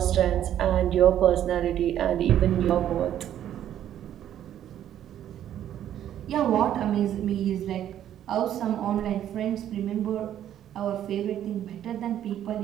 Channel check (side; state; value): left; quieter; 11.0 dB